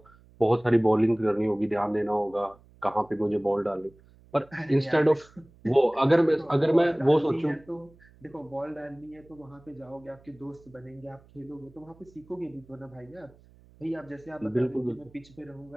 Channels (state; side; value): noise; right; hum, 27 dB below the sound